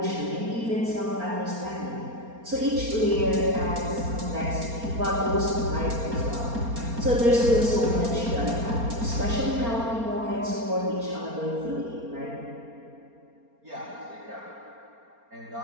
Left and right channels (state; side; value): late; left; 4.3 ms